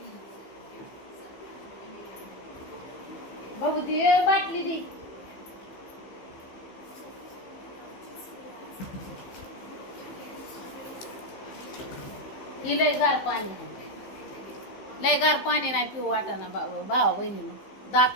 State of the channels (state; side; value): late; right; 15 ms